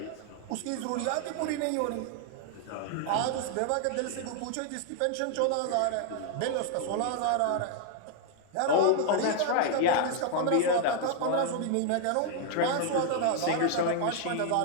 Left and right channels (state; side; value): different; both; correlation 0.00